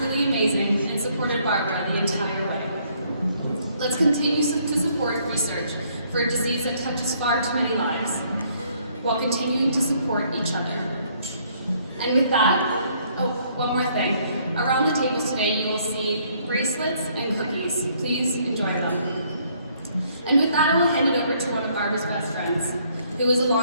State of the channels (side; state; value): both; inverted; correlation -0.66